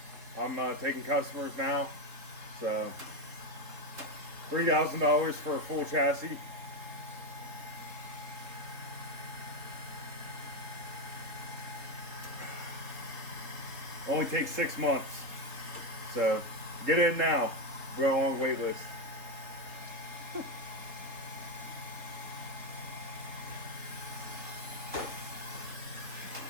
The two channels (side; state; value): left; late; 3.7 ms